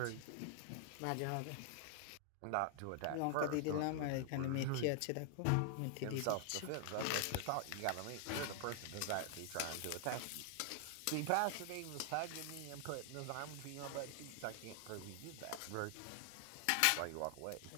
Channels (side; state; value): both; different; correlation 0.00